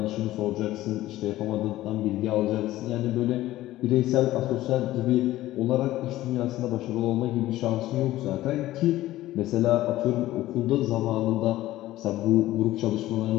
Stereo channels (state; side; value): quieter; right; 15.6 dB